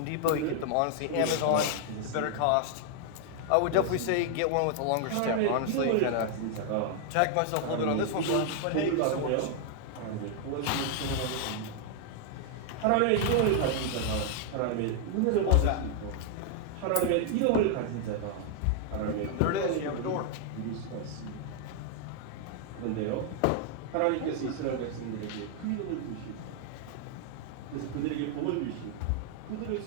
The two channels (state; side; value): different; both; correlation 0.00